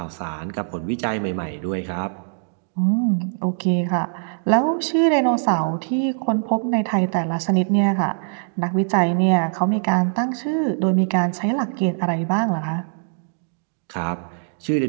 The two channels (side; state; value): left; silent; digital silence